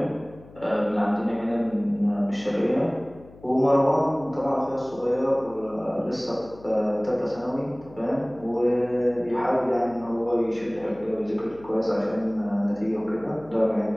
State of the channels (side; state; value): left; noise; hum, 22 dB below the sound